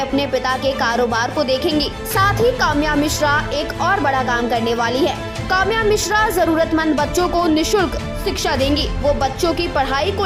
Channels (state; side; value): identical; both; correlation 1.00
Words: पिता के कारोबार को देखेंगी। साथ ही काम्या मिश्रा एक और बड़ा काम करने वाली है। काम्या मिश्रा जरूरतमंद बच्चों को निशुल्क शिक्षा देंगी। वो बच्चों की पढ़ाई को